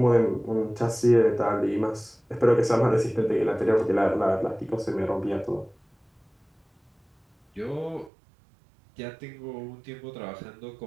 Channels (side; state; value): left; drops out; at 8.1 s